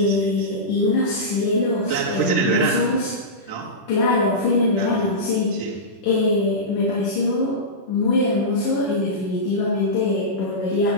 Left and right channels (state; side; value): late; right; 10 ms